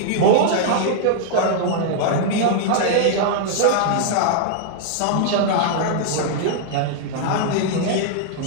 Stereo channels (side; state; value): both; different; correlation -0.01